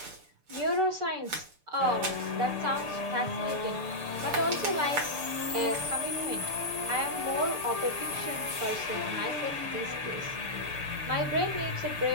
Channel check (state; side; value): late; left; 6.8 ms